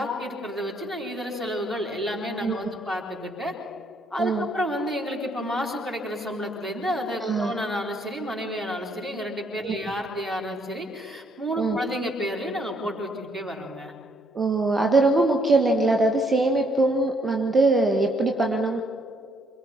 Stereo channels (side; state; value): both; normal; correlation 0.69